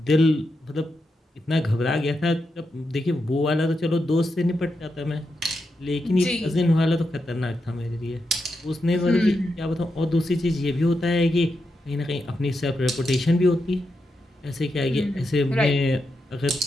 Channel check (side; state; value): both; normal; correlation 0.85